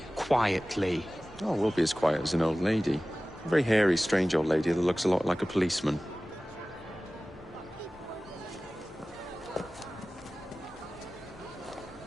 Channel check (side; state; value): both; normal; correlation 0.97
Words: Quietly. Oh, we'll be as quiet as an old lady. A very hairy, strange old lady that looks a lot like a policeman.